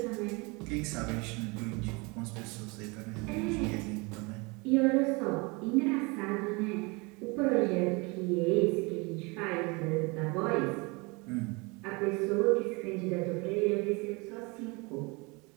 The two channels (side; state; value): left; quieter; 27.6 dB